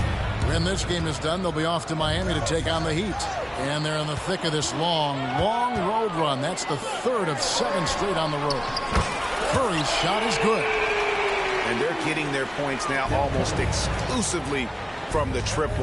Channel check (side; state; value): both; identical; correlation 1.00